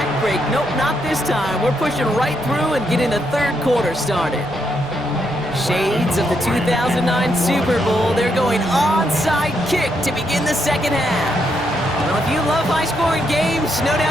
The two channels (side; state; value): both; normal; correlation 0.78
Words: break. Nope, not this time. We're pushing right through and getting the 3rd quarter started. Shades of the 2009 Super Bowl. They're going onside kick to begin the 2nd half. Well, if you love high-scoring games, no